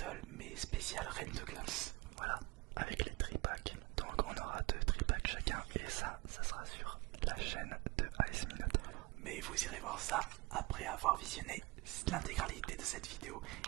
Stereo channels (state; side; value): quieter; left; 23.3 dB